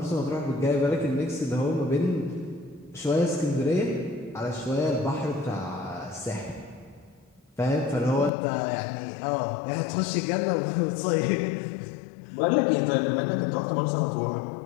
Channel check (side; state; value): right; drops out; at 8.3 s